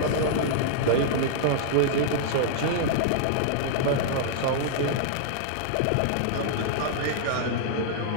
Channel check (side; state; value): both; different; correlation -0.01